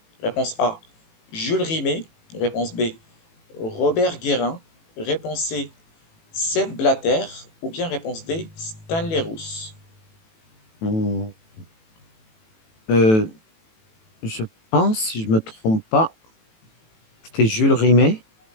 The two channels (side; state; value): right; late; 18 ms